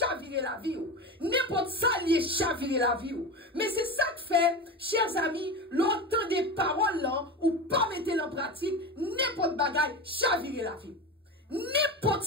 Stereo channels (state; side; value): normal; both; correlation 0.24